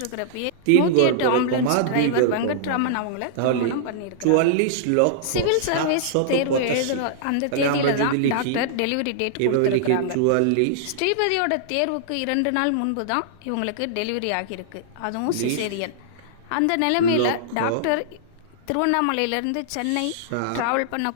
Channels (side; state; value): both; different; correlation -0.01